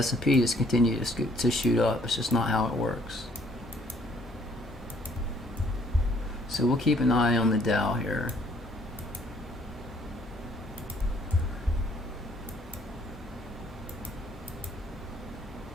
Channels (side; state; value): both; normal; correlation 0.63